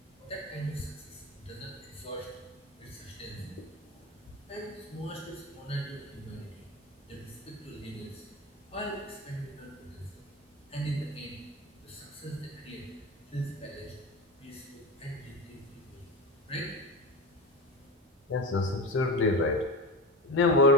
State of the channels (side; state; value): both; normal; correlation 0.25